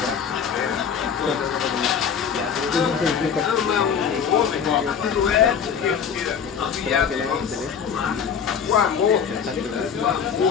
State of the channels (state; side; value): quieter; right; 7.2 dB